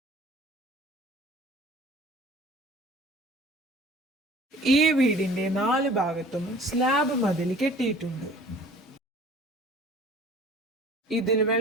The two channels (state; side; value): normal; both; correlation 0.49